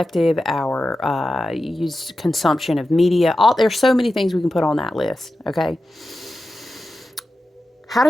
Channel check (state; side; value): normal; both; correlation 0.92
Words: our use consumption of media, there's so many things we can put on that list, okay? How